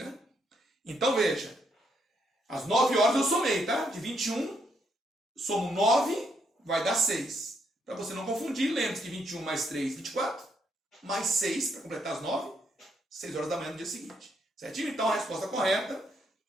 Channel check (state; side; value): normal; both; correlation 0.75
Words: Então, veja, às 9 horas eu somei, tá? De 21, somo 9, vai dar 6. Para você não confundir, lembre-se que 21 mais 3, 24, mais 6, para completar as 9, 6 horas da manhã do dia seguinte. Certinho? Então, a resposta correta